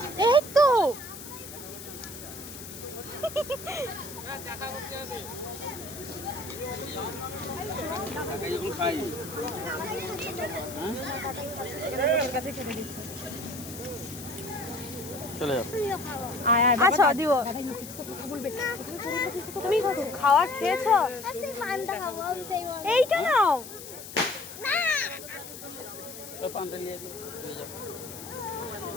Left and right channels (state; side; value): noise; left; hiss, 12 dB below the sound